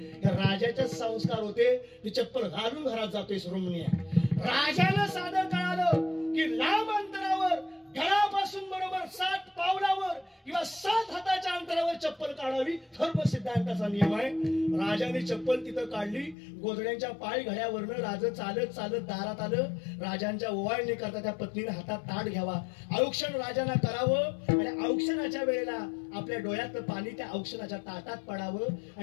राजाचे संस्कार होते. ती चप्पल घालून घरात जातोय सुरमणी. राजाला साधं कळालं की लांब अंतरावर घरापासून बरोबर 7 पावलावर किंवा 7 हाताच्या अंतरावर चप्पल काढावी, धर्म सिद्धांताचा नियम आहे. राजाने चप्पल तिथं काढली. गोधड्यांच्या पाय घड्यावरनं राजा चालत दारात आलं. राजांच्या ओवाळणी करता त्या पत्नीने हातात ताट घ्यावा, औक्षण राजांना करावं आणि औक्षणाच्या वेळेला आपल्या डोळ्यातलं पाणी त्या औक्षणाच्या ताटात पडावं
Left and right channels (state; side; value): drops out; right; at 16.4 s